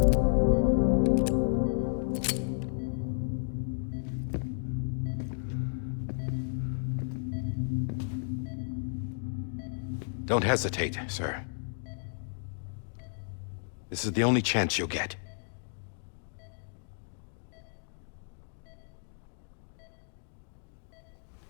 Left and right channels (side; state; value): right; silent; digital silence